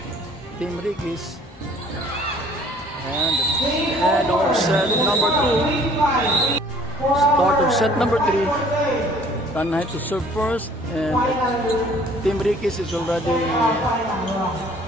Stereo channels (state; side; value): normal; both; correlation 0.54